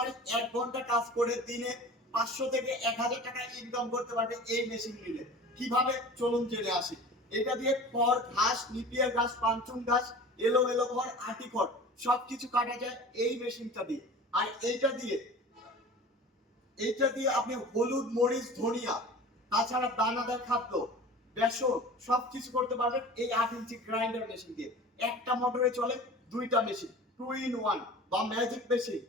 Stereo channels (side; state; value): both; normal; correlation 0.39